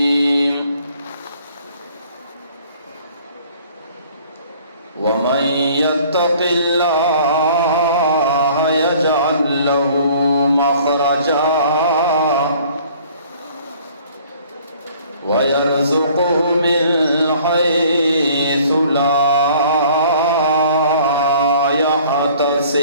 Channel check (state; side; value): inverted; both; correlation -0.54